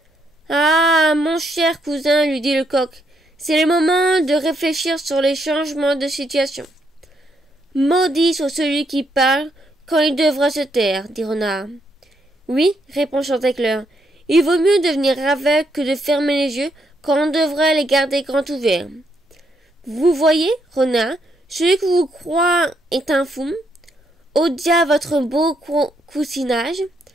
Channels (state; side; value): normal; both; correlation 0.76